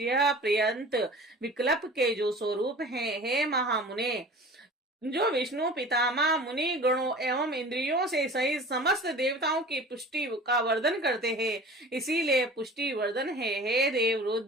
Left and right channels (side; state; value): both; normal; correlation 0.41